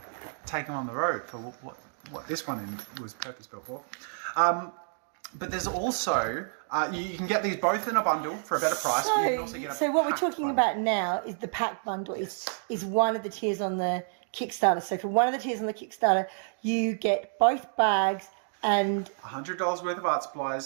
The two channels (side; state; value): left; silent; digital silence